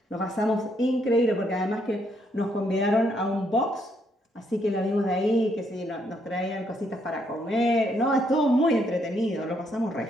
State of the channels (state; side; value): normal; both; correlation 0.73